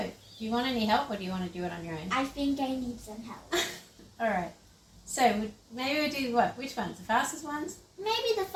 Do you want any help or do you want to do it on your own? I think I need some help. Alright, so maybe we'll do what? Which ones? The fastest ones? Maybe the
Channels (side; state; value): both; identical; correlation 1.00